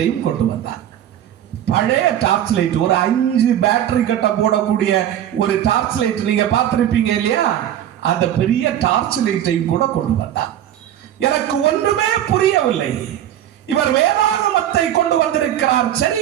கொண்டு வந்தார். பழைய டார்ச் லைட், ஒரு 5 பேட்டரி கட்ட போடக்கூடிய ஒரு டார்ச் லைட் நீங்க பார்த்திருப்பீங்க இல்லையா? அந்த பெரிய டார்ச் லைட்டையும் கூட கொண்டு வந்தார். எனக்கு ஒன்றுமே புரியவில்லை. இவர் வேதாகமத்தை கொண்டு வந்திருக்கிறார்,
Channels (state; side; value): quieter; left; 11.2 dB